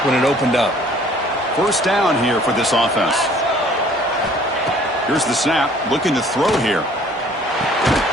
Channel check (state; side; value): normal; both; correlation 0.55